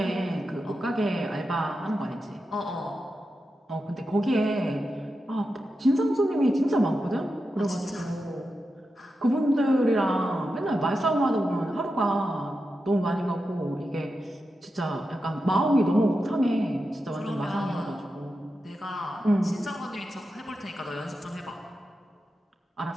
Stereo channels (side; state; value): both; normal; correlation 0.89